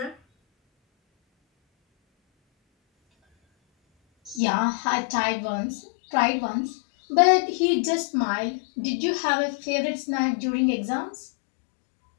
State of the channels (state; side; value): drops out; right; at 4.4 s